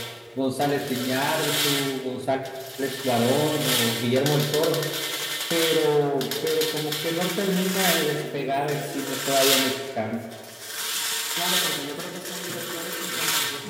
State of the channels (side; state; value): both; identical; correlation 1.00